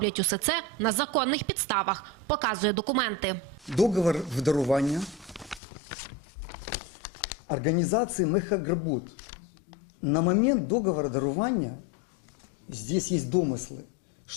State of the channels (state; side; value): drops out; right; at 5.6 s